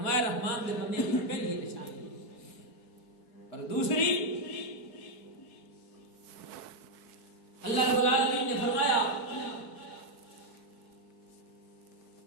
رحمان دے بندے کی پہلی نشانی. اور دوسری اللہ رب العالمین نے فرمایا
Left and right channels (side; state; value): right; late; 4.6 ms